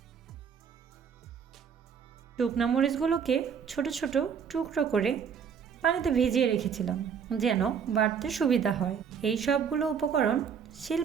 শুকনা মরিচগুলোকে ছোট ছোট টুকরো করে পানিতে ভিজিয়ে রেখেছিলাম যেন বাটতে সুবিধা হয়। এই সবগুলো উপকরণ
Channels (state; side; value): quieter; left; 7.1 dB